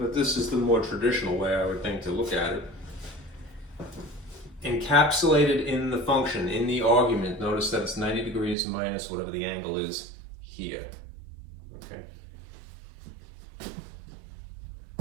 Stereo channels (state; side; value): drops out; left; at 8.6 s